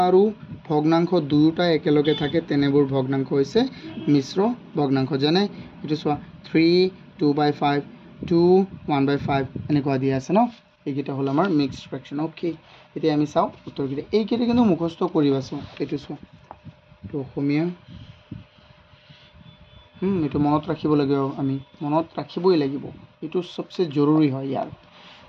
আৰু ভগ্নাংশ দুয়োটা একেলগে থাকে তেনেবোৰ ভগ্নাংশ হৈছে মিশ্ৰ ভগ্নাংশ যেনে এইটো চোৱা 3 2/5 2 1/5 এনেকুৱা দিয়া আছে ন এইকেইটা হ'ল আমাৰ মিক্সড ফ্ৰেকশ্যন ওকে এতিয়া আমি চাওঁ উত্তৰকেইটা এইকেইটা কিন্তু মুখস্থ কৰিবা চোৱা এইটো চোৱা এইটো অসমীয়া এইটো মনত ৰাখিব লাগিব আমি মনত ৰাখিবই লাগিব এইটো সবচে জৰুৰী হয় ইয়াৰ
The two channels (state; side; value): identical; both; correlation 1.00